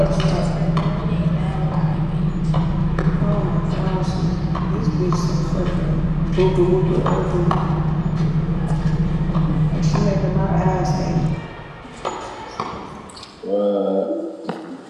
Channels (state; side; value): identical; both; correlation 1.00